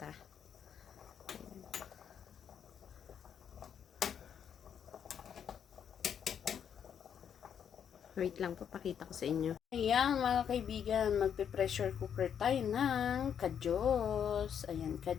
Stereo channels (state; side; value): quieter; right; 8.2 dB